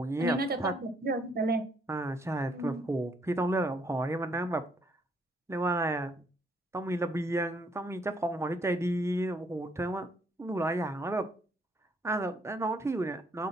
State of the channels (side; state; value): both; normal; correlation 0.69